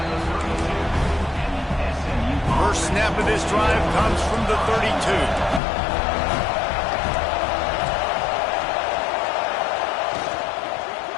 First snap of this drive comes from the 32.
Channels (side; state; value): right; drops out; at 5.6 s